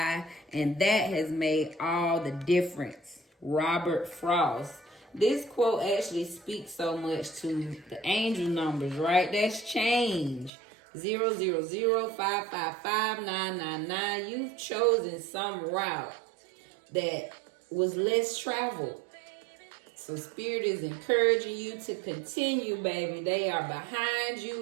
and that has made all the difference. Robert Frost. This quote actually speaks so much to the angel numbers, right? That's change. 000555999. You've chosen some route that was less traveled. So Spirit is encouraging you to continue, baby. They are behind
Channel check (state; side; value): drops out; left; at 10.5 s